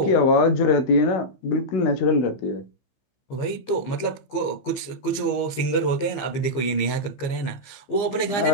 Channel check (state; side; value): late; right; 15 ms